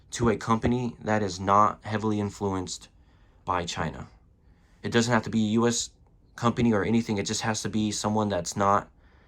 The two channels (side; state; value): both; identical; correlation 1.00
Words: to a company that is not heavily influenced by China. It doesn't have to be a U.S. company or anything. It just has to be someone that's not